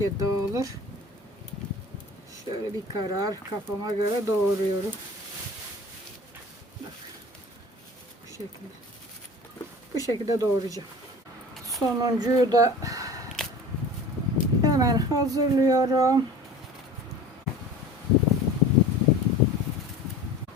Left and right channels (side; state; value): both; normal; correlation 0.40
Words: ya dağılır. Şöyle bir karar kafama göre doğruyorum. Bak. Bu şekilde. Bu şekilde doğrayacağım. Sonuncuyu da hemen hazırlıyorum.